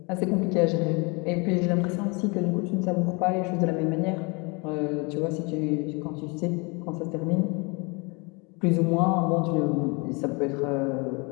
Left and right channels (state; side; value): quieter; right; 30.0 dB